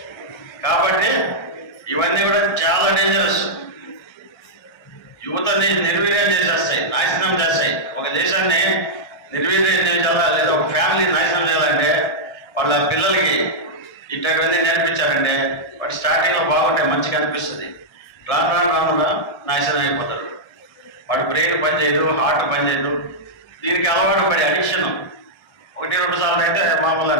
కాబట్టి ఇవన్నీ కూడా చాలా డేంజరస్. యువతని నిర్వీర్యం చేసేస్తాయి, నాశనం చేస్తాయి. ఒక దేశాన్ని నిర్వీర్యం చేయాలా లేదా ఒక ఫ్యామిలీని నాశనం చేయాలంటే వాళ్ళ పిల్లలకి ఇట్లాంటివన్నీ నేర్పించారంటే వాడు స్టార్టింగ్లో బాగుంటాయి, మంచిగా అనిపిస్తుంది. రాను నాశనం అయిపోతాడు. వాడు బ్రెయిన్ పనిచేయదు, హార్ట్ పనిచేయదు. దీనికి అలవాటు పడి అడిక్షన్ 1-2 సార్లు అయితే మామూలు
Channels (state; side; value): late; right; 1.3 ms